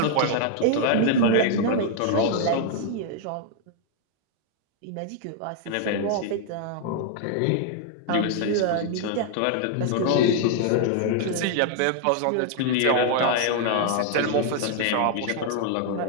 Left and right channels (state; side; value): different; both; correlation 0.00